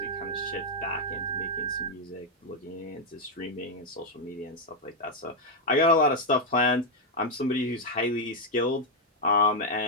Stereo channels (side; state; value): both; normal; correlation 0.00